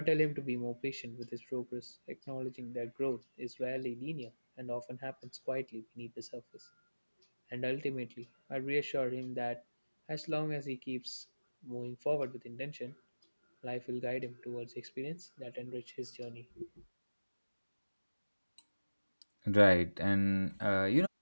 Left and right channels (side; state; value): both; inverted; correlation -1.00